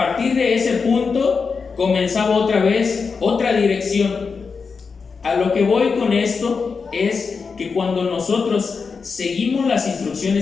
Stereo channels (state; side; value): quieter; right; 5.2 dB